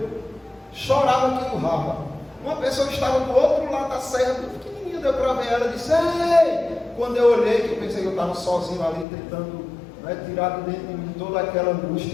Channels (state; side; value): drops out; right; at 9.1 s